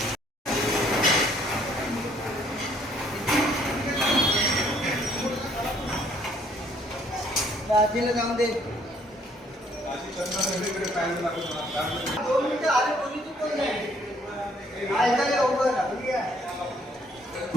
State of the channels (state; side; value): normal; both; correlation 0.64